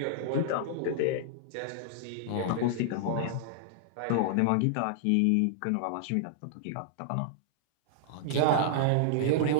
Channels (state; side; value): different; both; correlation -0.01